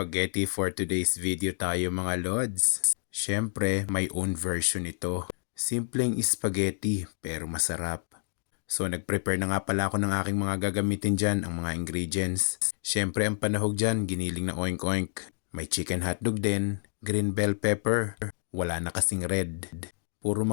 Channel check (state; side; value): silent; right; digital silence